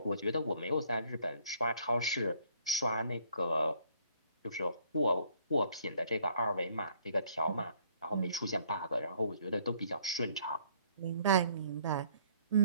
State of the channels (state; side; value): inverted; both; correlation -0.61